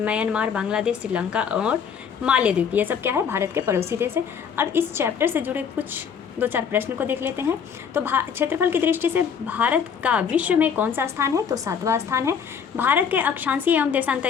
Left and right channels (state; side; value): quieter; right; 7.0 dB